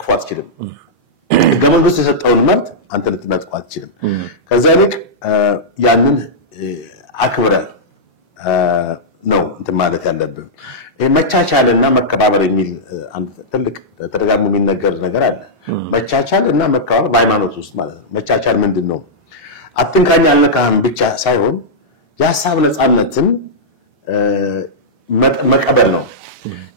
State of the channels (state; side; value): normal; both; correlation -0.11